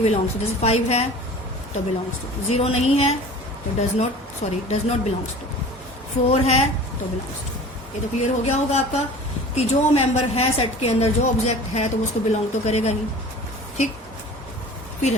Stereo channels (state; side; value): normal; both; correlation 0.41